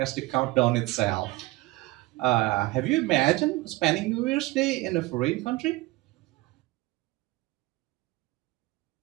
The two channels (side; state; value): left; quieter; 19.9 dB